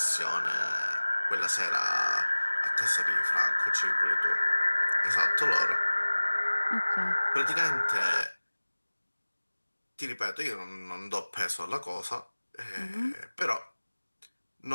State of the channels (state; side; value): inverted; both; correlation -1.00